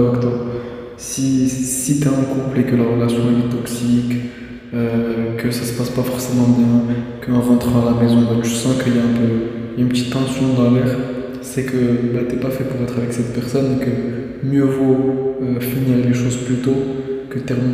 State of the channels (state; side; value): identical; both; correlation 1.00